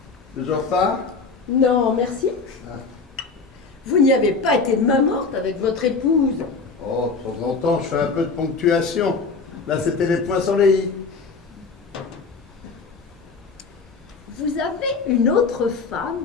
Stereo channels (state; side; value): quieter; right; 4.4 dB